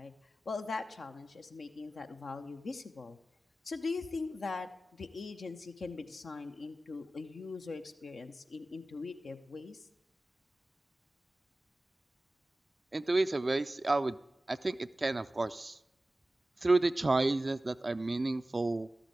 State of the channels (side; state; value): both; normal; correlation 0.96